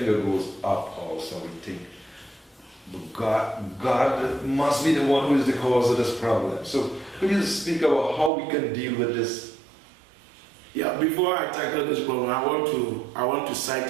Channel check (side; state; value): left; drops out; at 8.3 s